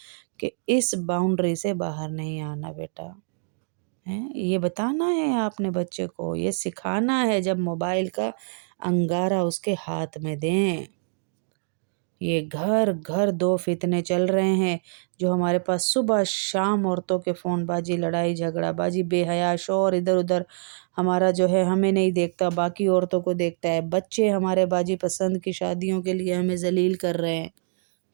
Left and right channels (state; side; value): silent; left; digital silence